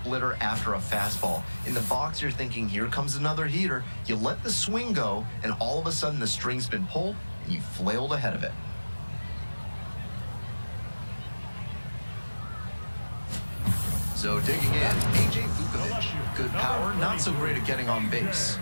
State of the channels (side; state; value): both; inverted; correlation -1.00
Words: after a fastball. In the box, you're thinking, here comes another heater. You let the swing go, and all of a sudden the string's been pulled, and you flailed ahead of it. So digging in, A.J. Vukovic. Good power, not so great at getting on base.